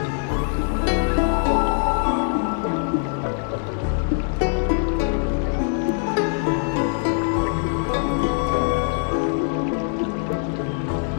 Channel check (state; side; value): silent; right; 64 dB below the other